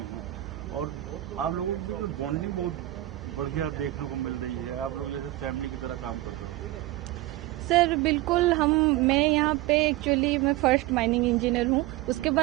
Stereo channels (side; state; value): left; quieter; 16.8 dB